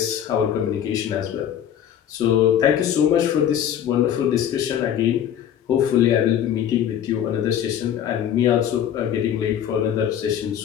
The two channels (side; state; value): right; quieter; 9.9 dB